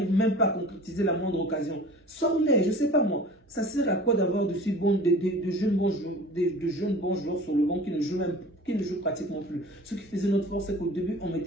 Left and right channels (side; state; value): both; normal; correlation 0.42